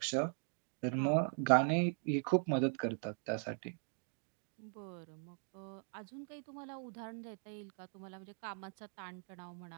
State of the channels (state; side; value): silent; left; 51 dB below the other